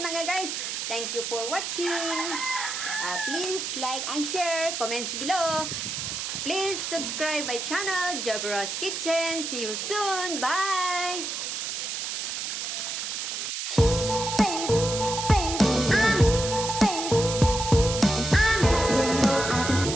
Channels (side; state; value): right; noise; hiss, 4 dB below the sound